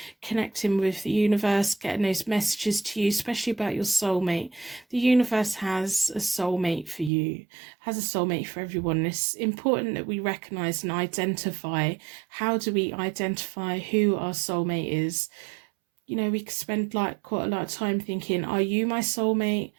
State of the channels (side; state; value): left; drops out; at 7.1 s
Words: connecting with the universe, getting those messages to you, especially about your soulmate. The universe has a soulmate for you, has a soulmate for everyone. It's important that we recognize and identify. How do we identify who our soulmate is? You know, we could spend like quite a lot of time thinking, are you my soulmate?